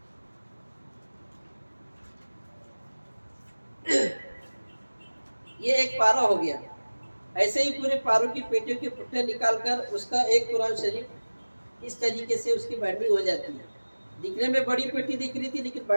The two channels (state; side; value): inverted; both; correlation -1.00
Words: یہ ایک پارا ہو گیا۔ ایسے ہی پورے پاروں کی پیٹیوں کے پٹھے نکال کر اس کا ایک قرآن شریف اس طریقے سے اس کی بائنڈنگ ہو جاتی ہے۔ دکھنے میں بڑی پیٹی دکھ رہی تھی لیکن